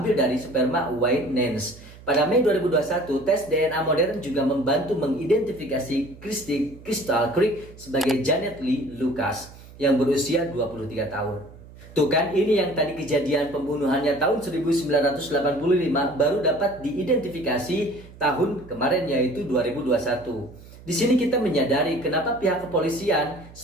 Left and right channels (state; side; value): noise; right; hum, 20 dB below the sound